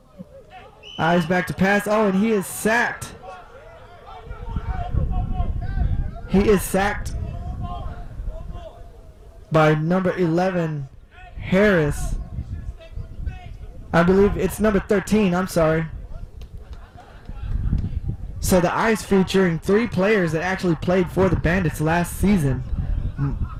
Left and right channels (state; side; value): identical; both; correlation 1.00